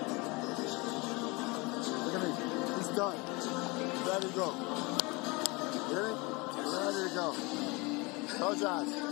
Look at me. He's done. Ready to go. Hear me? Ready to go. Close your eyes.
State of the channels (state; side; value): quieter; right; 26.2 dB